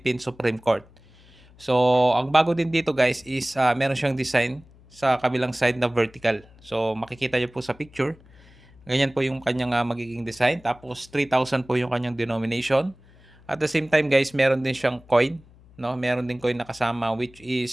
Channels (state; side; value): noise; left; hum, 26 dB below the sound